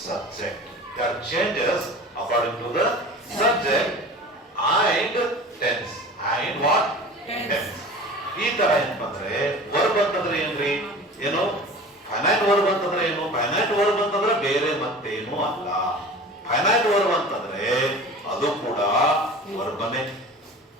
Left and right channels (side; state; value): both; normal; correlation 0.38